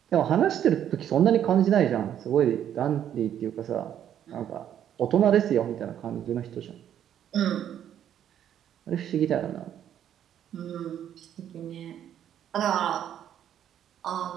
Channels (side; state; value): left; quieter; 10.1 dB